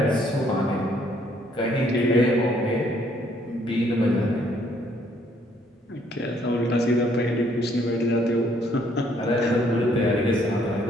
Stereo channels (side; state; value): both; normal; correlation 0.66